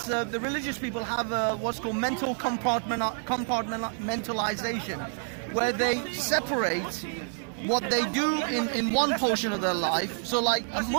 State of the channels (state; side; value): silent; left; 57 dB below the other